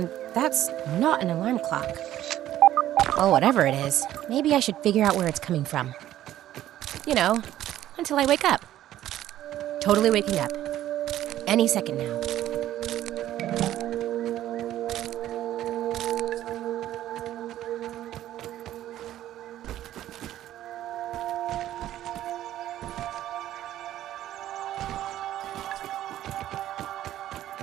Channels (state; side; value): quieter; left; 12.9 dB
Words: that's not an alarm clock. Well, whatever it is, maybe I should figure out where it's coming from. You know, until I wake up. Totally waking up. Any second now.